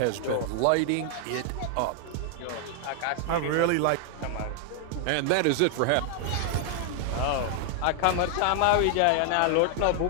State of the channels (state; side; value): different; both; correlation 0.00